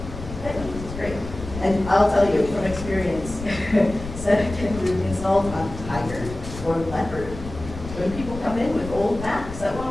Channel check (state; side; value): noise; left; rumble, 11 dB below the sound